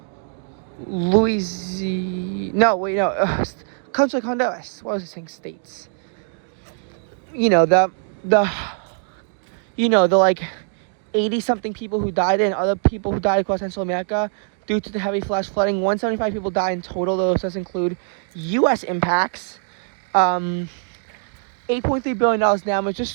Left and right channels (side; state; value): left; silent; 64 dB below the other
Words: countries like Honduras. What was I saying? States. The like 80-something people who died and other people who died across Central America due to the heavy flash flooding. 175 people died in total. Those does include U.S. impacts. $8.3 billion damage. This